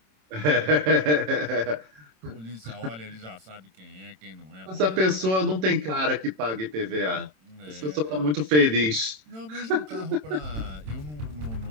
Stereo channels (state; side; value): late; left; 27 ms